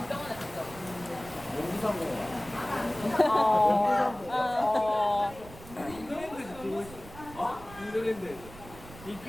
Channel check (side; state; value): right; noise; rumble, 17 dB below the sound